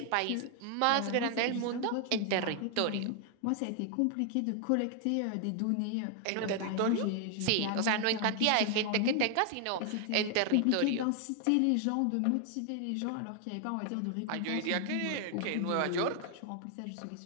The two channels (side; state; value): both; different; correlation 0.00